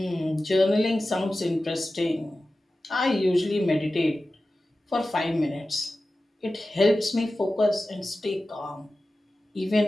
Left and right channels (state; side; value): normal; both; correlation 0.95